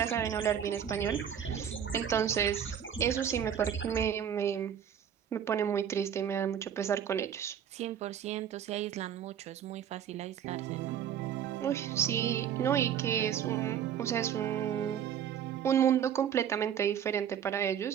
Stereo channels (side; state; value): left; quieter; 8.9 dB